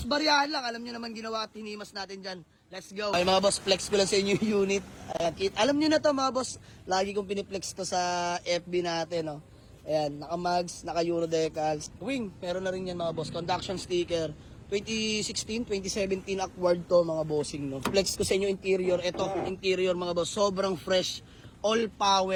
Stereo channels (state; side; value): identical; both; correlation 1.00